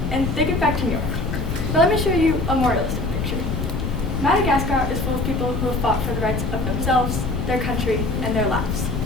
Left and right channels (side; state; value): left; noise; rumble, 4 dB below the sound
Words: and they get back to New York. But let me show you a more realistic picture. Madagascar is full of people who have fought for the rights of themselves, their country, and their lives.